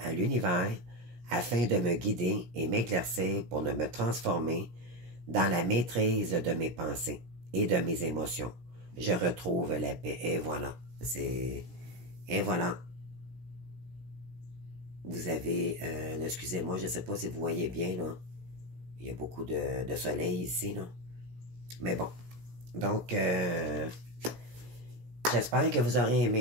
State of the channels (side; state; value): left; late; 17 ms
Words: à l'univers afin de me guider et m'éclaircir pour me transformer dans la maîtrise de mes pensées et de mes émotions. Je retrouve la paix. Et voilà. Et voilà. Vous avez... excusez-moi, je ne sais pas si vous voyez bien, là. Il y a beaucoup de soleil ici, là. Mais bon. Donc, j'espère que vous aurez